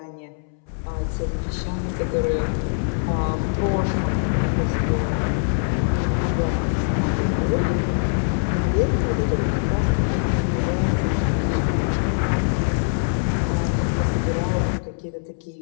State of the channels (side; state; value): right; silent; 64 dB below the other